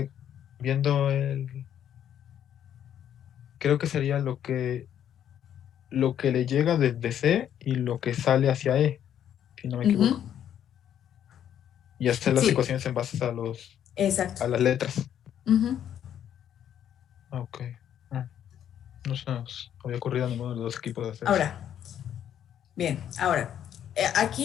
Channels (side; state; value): right; quieter; 9.9 dB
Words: viendo el... Creo que sería lo que le llega desde C y lo que sale hacia E, si no me equivoco. Y hacer las Sí. ecuaciones en base a Exacto. a las letras. Ujú. Ok. No se nos había ocurrido a ninguno de los dos equipos de hacer eso. Ahora, bien, ahora,